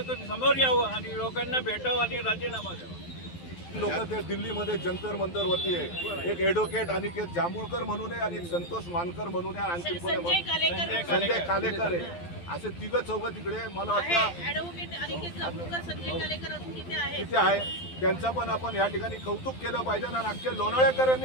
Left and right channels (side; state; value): right; late; 12 ms